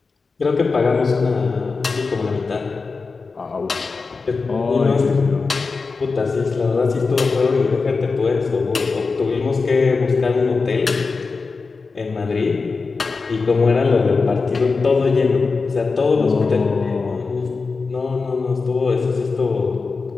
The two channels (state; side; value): quieter; right; 4.4 dB